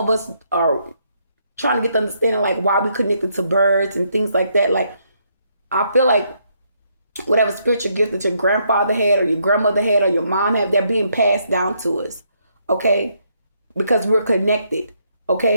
us are trying to get the understanding like why we connected to birds and things like that. Like I feel like whatever spiritual gift that your grandfather had or your grandmother had or your mom had, they're being passed down to us, okay? Because we're connected,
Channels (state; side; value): inverted; both; correlation -0.74